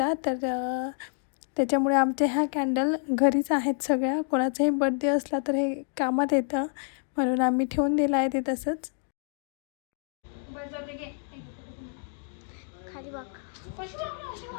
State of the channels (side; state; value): right; silent; 59 dB below the other